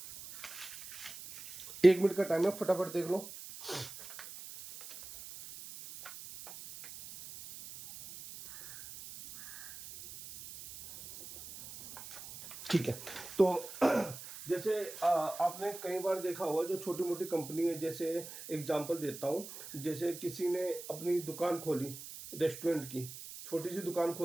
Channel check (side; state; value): right; noise; hiss, 13 dB below the sound